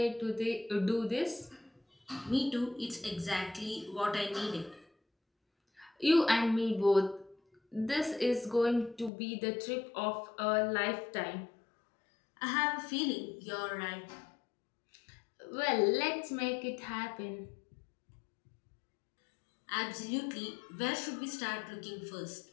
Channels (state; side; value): drops out; right; at 9.1 s